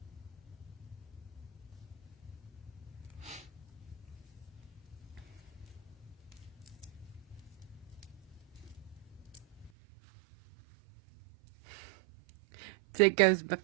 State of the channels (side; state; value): left; drops out; at 9.7 s